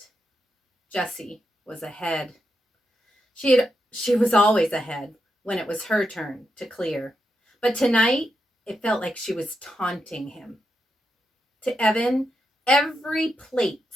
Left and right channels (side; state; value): both; normal; correlation 0.85